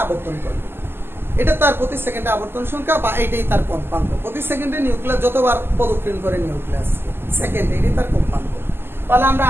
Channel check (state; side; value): late; left; 0.11 ms